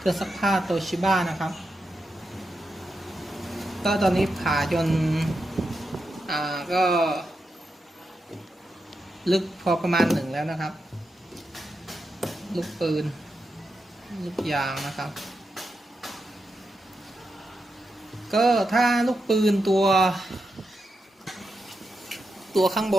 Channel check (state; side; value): normal; both; correlation 0.87